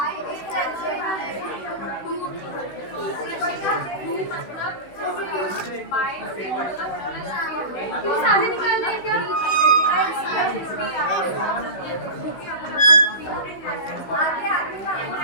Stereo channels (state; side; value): late; right; 16 ms